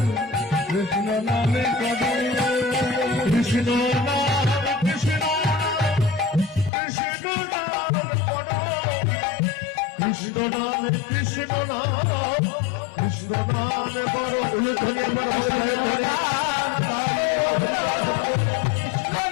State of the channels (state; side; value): drops out; right; at 6.7 s